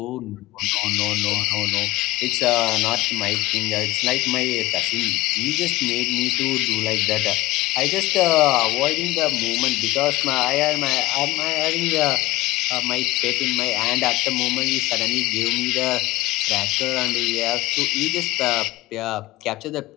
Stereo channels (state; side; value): quieter; right; 18.8 dB